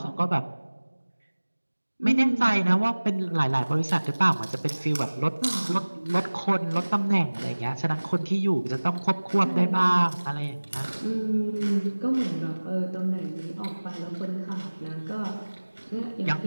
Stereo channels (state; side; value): inverted; both; correlation -1.00